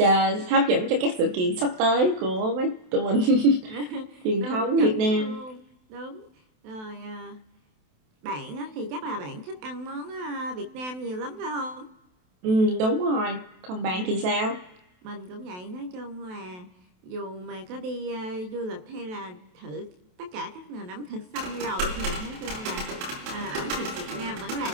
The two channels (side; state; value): left; late; 28 ms